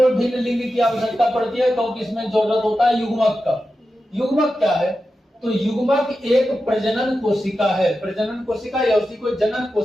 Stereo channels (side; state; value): both; normal; correlation 0.91